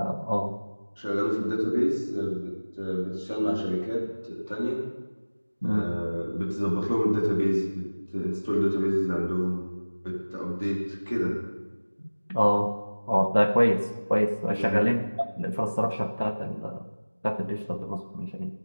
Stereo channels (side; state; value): both; inverted; correlation -1.00